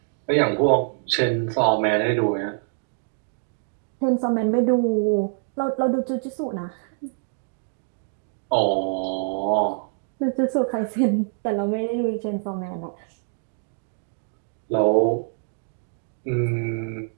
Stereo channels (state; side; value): silent; left; digital silence